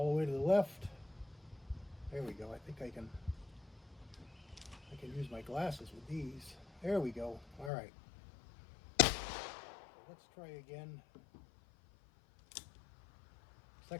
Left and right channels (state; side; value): drops out; right; at 7.7 s